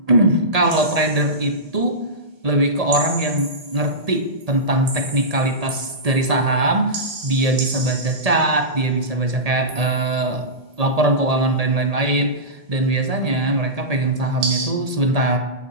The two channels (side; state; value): left; late; 1.7 ms